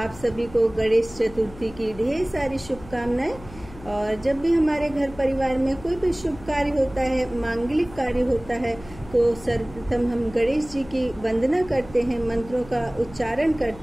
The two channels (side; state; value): left; noise; hum, 18 dB below the sound